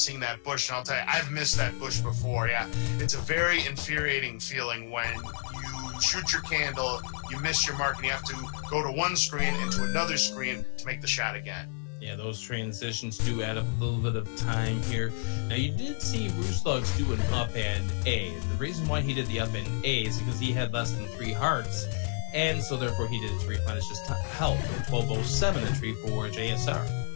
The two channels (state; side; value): silent; right; digital silence